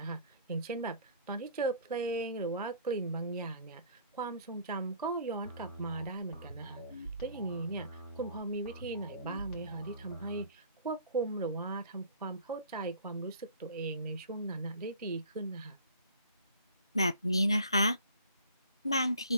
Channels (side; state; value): both; inverted; correlation -0.51